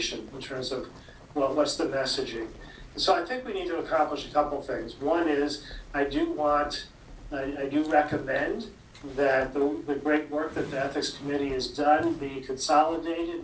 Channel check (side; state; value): both; identical; correlation 1.00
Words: in terms of, what's the messaging. And so I think we need to accomplish a couple things. One is, I do recommend that the great work that the Ethics Committee has done be